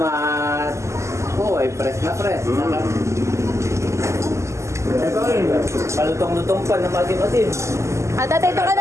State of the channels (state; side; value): late; left; 0.14 ms